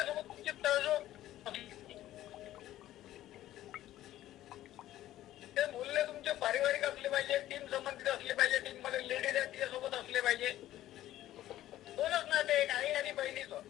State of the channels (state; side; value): quieter; right; 13.9 dB